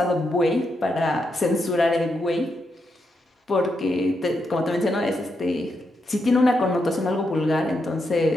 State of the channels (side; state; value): both; normal; correlation 0.83